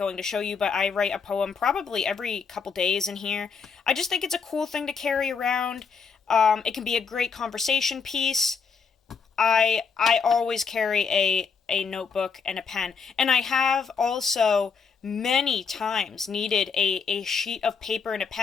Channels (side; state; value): right; quieter; 5.7 dB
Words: to show you, but I write a poem probably every couple days in here. I just think it's a cool thing to carry around. It can be a great conversation piece. I always carry a notebook and a pen. And I have also many times needed a sheet of paper and a